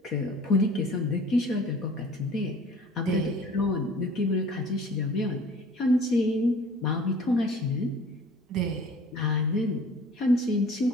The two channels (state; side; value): normal; both; correlation 0.47